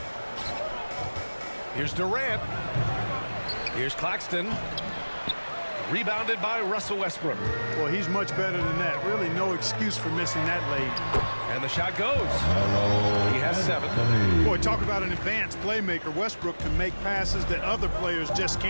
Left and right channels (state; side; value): inverted; both; correlation -1.00